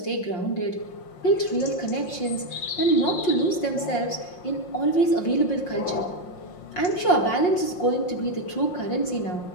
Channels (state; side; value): late; right; 5.6 ms